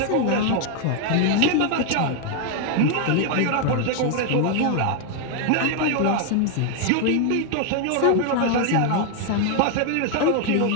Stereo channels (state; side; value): different; both; correlation 0.01